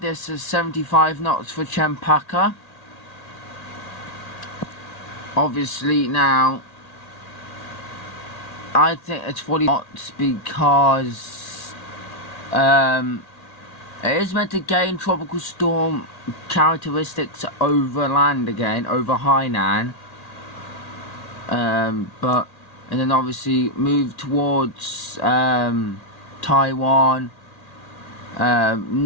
this as 75 knots for cempaka. Obviously now I think it's 40 knots because it is meant to gain tropical storm characteristics over land again, over Hainan, and then obviously move towards Taiwan,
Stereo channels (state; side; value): late; right; 1.8 ms